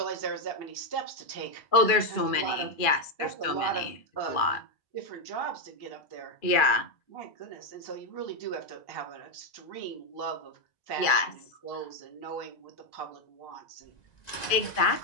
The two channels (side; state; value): right; late; 2.4 ms